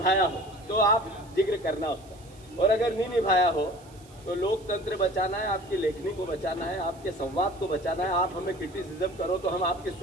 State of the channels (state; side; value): noise; right; hiss, 26 dB below the sound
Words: हो, तो आप जिक्र करना उसका। और अगर नहीं निभाया हो तो लोकतंत्र बचाना है, आपकी लेखनी को बचाना है, आपके संवाद को बचाना है। आप हमें क्रिटिसिज्म करो तो हम आपकी